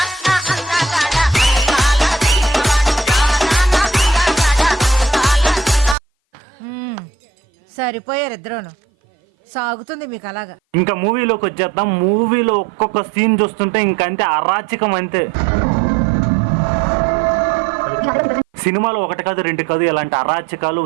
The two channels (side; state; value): left; drops out; at 6.0 s